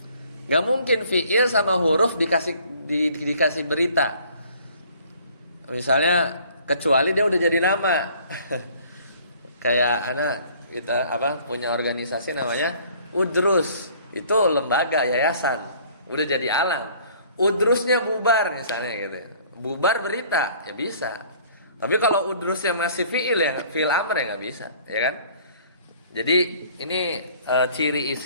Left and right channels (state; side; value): inverted; both; correlation -0.55